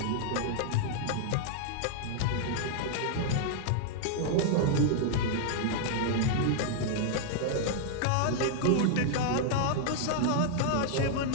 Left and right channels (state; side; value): different; both; correlation -0.01